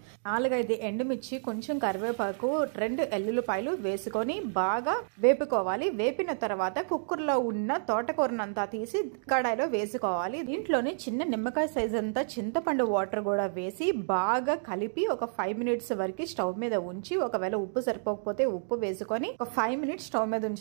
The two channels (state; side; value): silent; left; digital silence